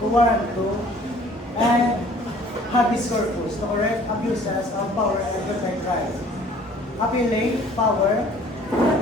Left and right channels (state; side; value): normal; both; correlation 0.53